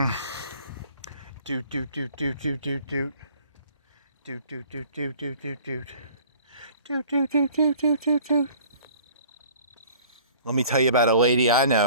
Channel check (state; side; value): inverted; both; correlation -0.50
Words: Doot. Let me tell you about a lady I